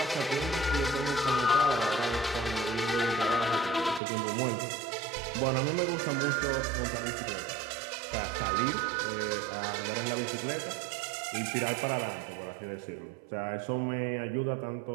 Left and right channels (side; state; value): left; drops out; at 4.0 s